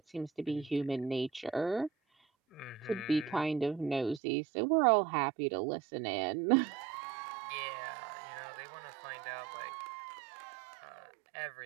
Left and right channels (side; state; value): left; drops out; at 4.2 s